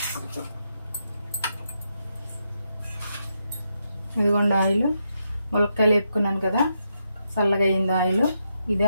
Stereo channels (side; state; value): both; inverted; correlation -0.82